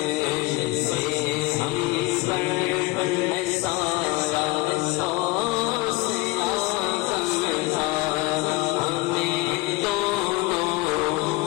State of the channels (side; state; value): right; quieter; 21.5 dB